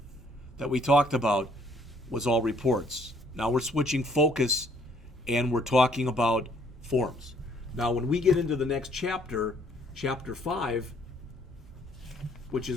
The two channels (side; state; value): both; normal; correlation 0.64